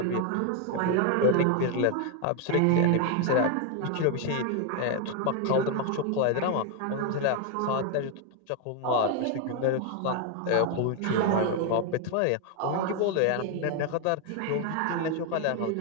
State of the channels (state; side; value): different; both; correlation 0.01